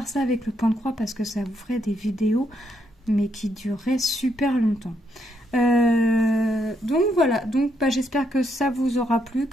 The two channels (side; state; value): both; normal; correlation 0.76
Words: ça avec le point de croix parce que ça vous ferait des vidéos, mais qui dureraient super longtemps. Donc voilà, donc j'espère que ça vous aura plu,